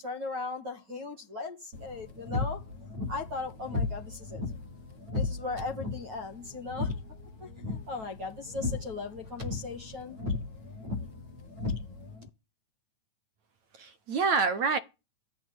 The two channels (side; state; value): left; late; 9.2 ms